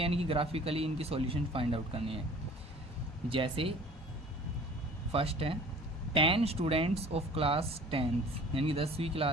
कि ग्राफिकली इनकी सॉल्यूशन फाइंड आउट करनी है। जैसे फर्स्ट है 10 स्टूडेंट्स ऑफ क्लास 10th यानी 10वीं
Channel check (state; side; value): normal; both; correlation 0.47